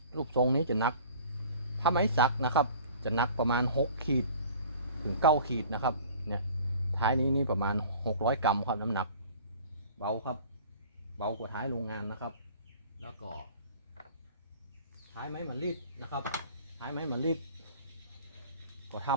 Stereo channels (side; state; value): both; inverted; correlation -0.46